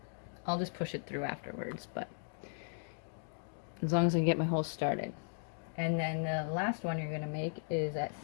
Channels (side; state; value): right; silent; digital silence